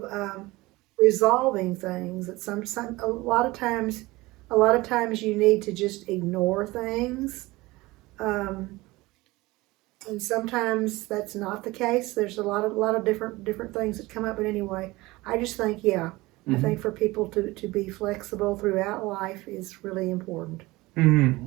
resolving things. That a lot of times you need to just ignore things, and sometimes that's not the case. There's a lot of different things that come up. But anyway, I just think I think for people to be flexible throughout life is really important. Mm-hmm.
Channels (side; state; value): left; quieter; 20.7 dB